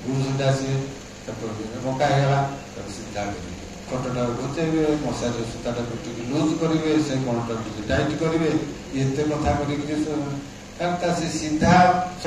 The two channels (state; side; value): identical; both; correlation 1.00